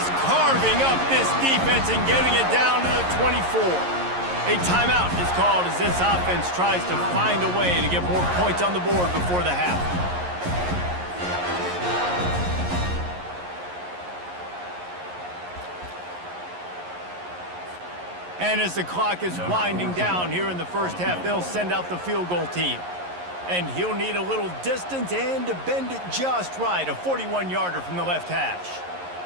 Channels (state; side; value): late; left; 11 ms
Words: carving up this defense and getting it down to the 24. A timeout is called as this offense tries to find a way to get more points on the board before the half. And as the clock is winding down here in the first half, they'll send out the field goal team. And he'll need a little distance and to bend it just right. A 41-yarder from the left hash.